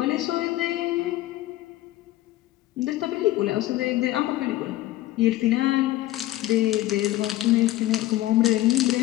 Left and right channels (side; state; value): right; quieter; 15.8 dB